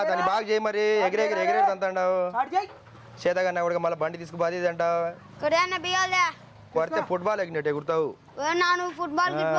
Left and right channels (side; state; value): both; identical; correlation 1.00